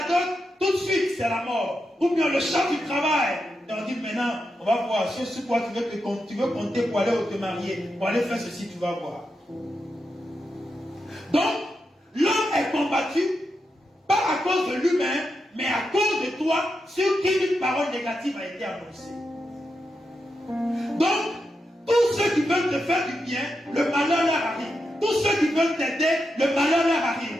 dot, tout de suite c'est la mort. Ou bien le champ du travail. Et on dit maintenant, on va voir sur quoi tu veux compter pour aller te marier, pour aller faire ceci, tu vas voir. Donc, l'homme est combattu, pas à cause de lui-même, mais à cause de toi, sur qui une parole négative a été annoncée. Donc, tous ceux qui veulent te faire du bien, le malheur leur arrive. Tous ceux qui veulent t'aider, le malheur leur arrive.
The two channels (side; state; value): both; normal; correlation 0.86